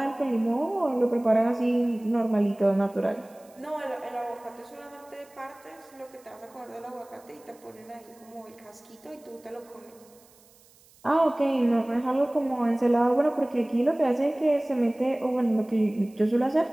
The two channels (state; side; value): noise; right; hiss, 28 dB below the sound